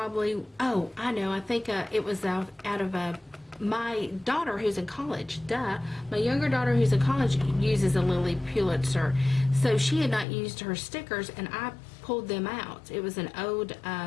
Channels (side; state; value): right; drops out; at 10.2 s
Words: know, I think it was out of my daughter who's in college. My younger daughter who's in college uses a Lilly Pulitzer. So she had not used her stickers, and I pulled them out. It was an old